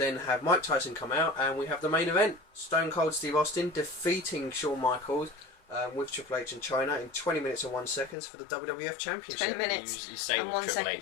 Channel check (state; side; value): drops out; right; at 8.2 s